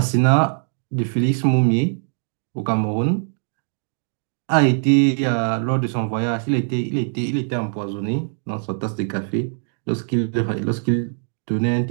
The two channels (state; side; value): silent; left; 61 dB below the other